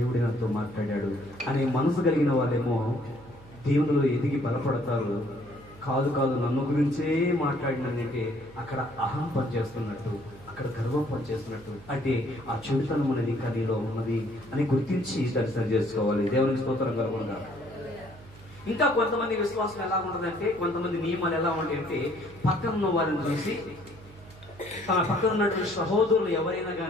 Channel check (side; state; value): right; noise; hum, 21 dB below the sound